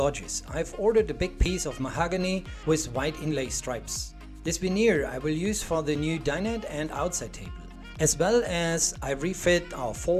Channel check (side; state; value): both; identical; correlation 1.00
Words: I've ordered a big piece of mahogany with white inlay stripes. This veneer I will use for the new dinette and outside table, as well as I refit